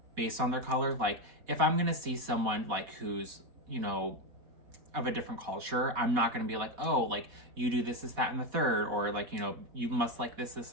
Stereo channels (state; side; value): late; left; 4.1 ms